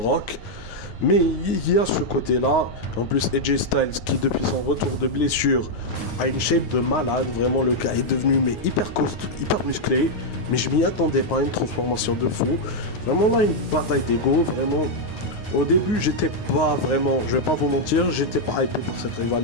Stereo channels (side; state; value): right; late; 9.5 ms